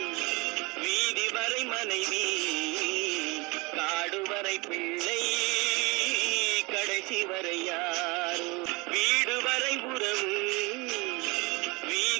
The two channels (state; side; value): quieter; left; 26.3 dB